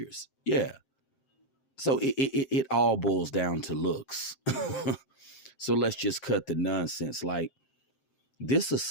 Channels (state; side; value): late; right; 7.6 ms